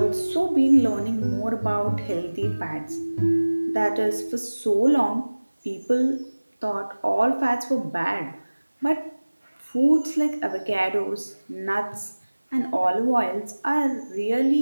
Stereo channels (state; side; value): inverted; both; correlation -1.00